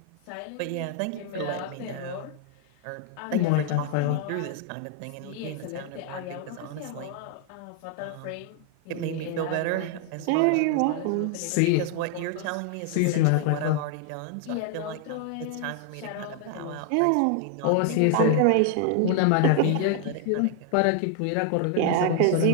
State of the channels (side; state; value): both; different; correlation 0.00